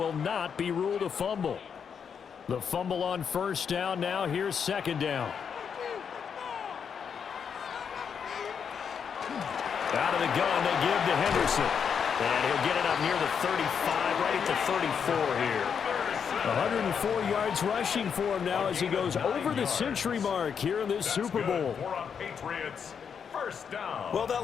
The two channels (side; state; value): right; quieter; 7.0 dB